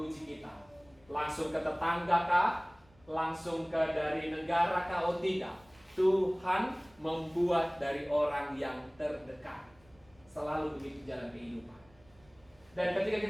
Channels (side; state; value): right; noise; rumble, 29 dB below the sound